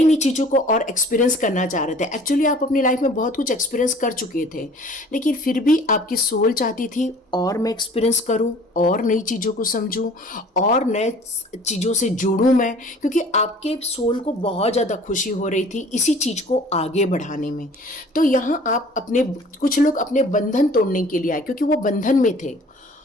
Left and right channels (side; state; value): both; normal; correlation 0.49